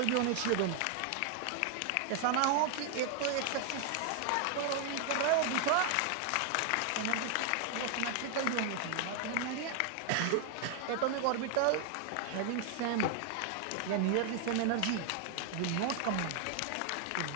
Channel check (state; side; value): different; both; correlation 0.00